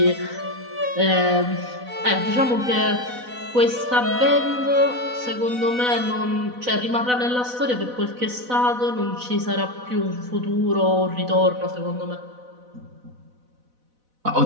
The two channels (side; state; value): left; late; 4.0 ms